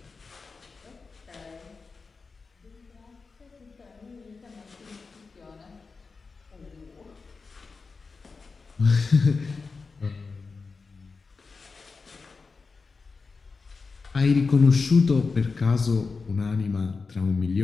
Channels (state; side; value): quieter; right; 4.5 dB